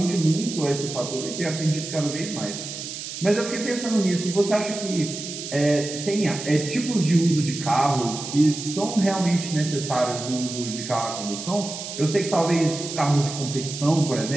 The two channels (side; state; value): right; noise; hiss, 8 dB below the sound